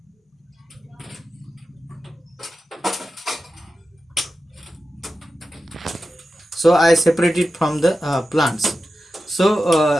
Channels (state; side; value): normal; both; correlation 0.92